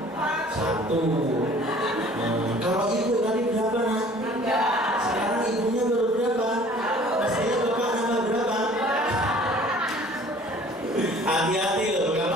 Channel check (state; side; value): normal; both; correlation 0.51